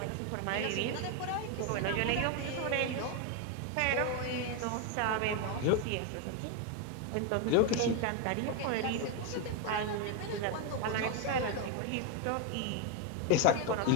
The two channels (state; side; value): different; both; correlation 0.02